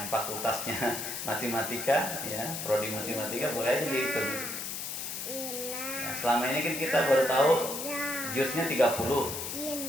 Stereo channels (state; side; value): noise; left; hiss, 5 dB below the sound